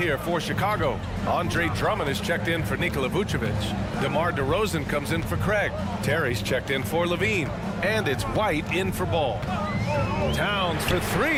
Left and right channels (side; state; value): both; identical; correlation 1.00